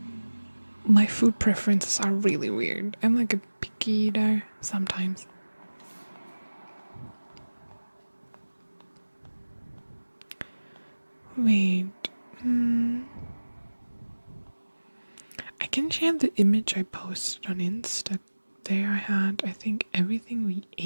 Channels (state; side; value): inverted; both; correlation -1.00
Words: My food preferences are really weird. I'm like a picky eater sometimes. Wait. I can share the image I posted on Insta. There I had, I think, everything we